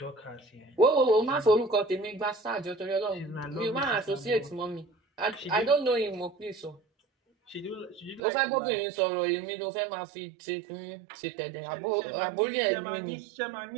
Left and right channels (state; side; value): drops out; left; at 8.2 s